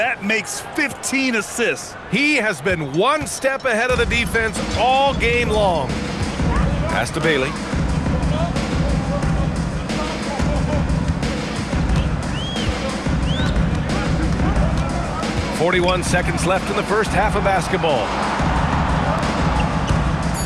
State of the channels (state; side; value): identical; both; correlation 1.00